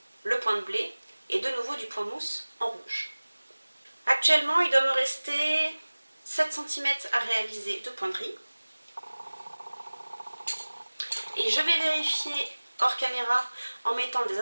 le point de blé et de nouveau du point mousse en rouge. Actuellement, il doit me rester 7 cm à réaliser de point de riz. Et je vais vérifier hors caméra en mettant des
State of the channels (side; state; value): both; inverted; correlation -1.00